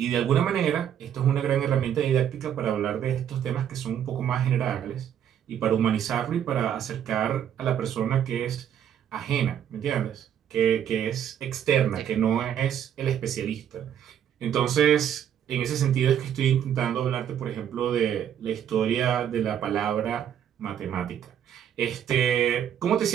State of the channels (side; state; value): left; quieter; 9.5 dB